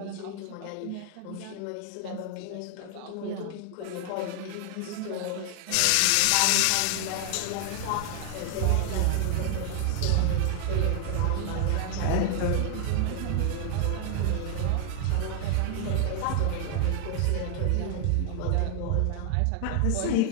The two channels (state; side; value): different; both; correlation 0.00